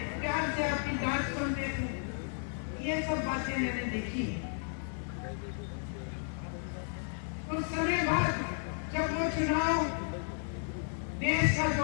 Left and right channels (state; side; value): silent; right; 55 dB below the other